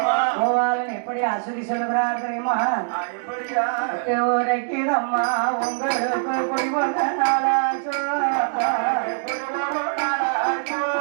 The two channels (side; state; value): left; silent; digital silence